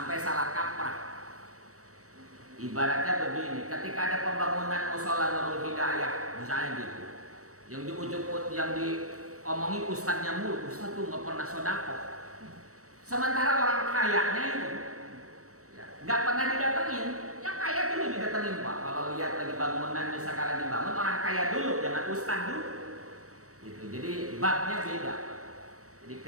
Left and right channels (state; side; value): late; left; 0.65 ms